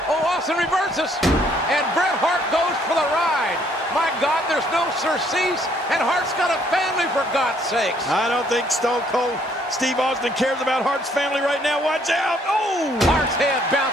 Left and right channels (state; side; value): normal; both; correlation 0.65